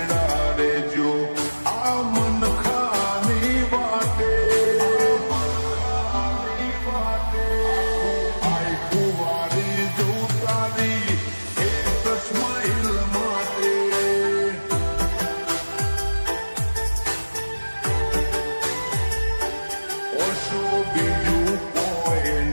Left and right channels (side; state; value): both; inverted; correlation -1.00